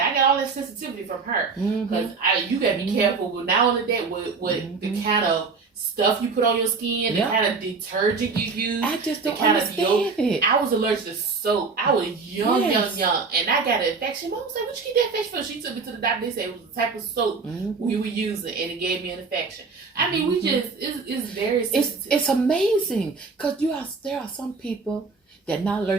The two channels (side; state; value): left; quieter; 4.6 dB